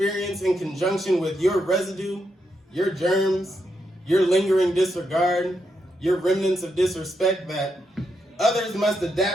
in conjunction with your residue, your germs, your lingering disregard, your remnants of disrespect, that others must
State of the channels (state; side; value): normal; both; correlation 0.82